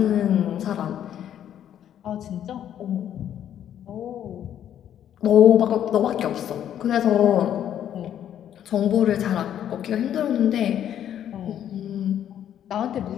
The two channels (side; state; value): right; quieter; 10.3 dB